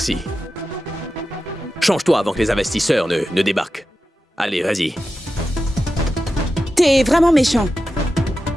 Change-toi avant que les investisseurs ne débarquent. Allez, vas-y. T'es vraiment méchant.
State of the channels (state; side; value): normal; both; correlation 0.91